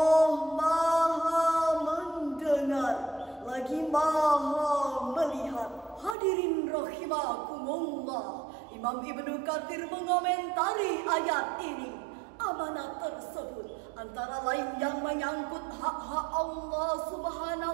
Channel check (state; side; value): drops out; left; at 6.2 s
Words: Maha mendengar lagi Maha melihat. Hadirin rahimakumullah, Imam Ibnu Katsir mengomentari ayat ini. Amanat tersebut antara lain yang menyangkut hak-hak Allah